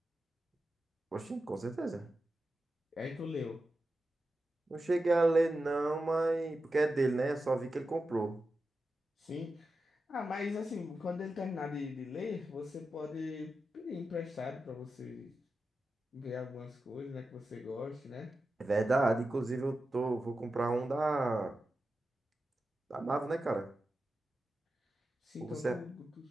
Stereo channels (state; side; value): normal; both; correlation 0.91